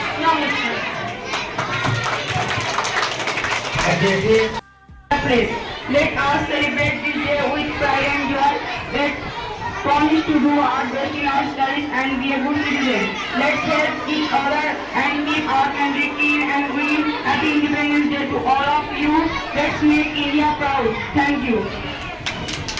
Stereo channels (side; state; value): both; identical; correlation 1.00